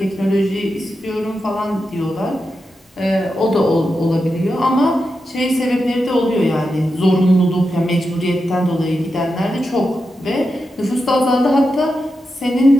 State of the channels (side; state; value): both; normal; correlation 0.88